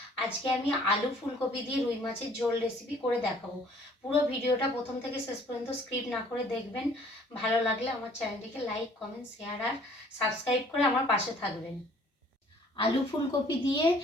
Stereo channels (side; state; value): both; normal; correlation 0.56